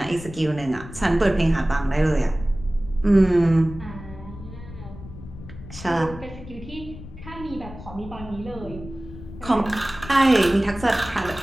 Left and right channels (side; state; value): left; noise; rumble, 14 dB below the sound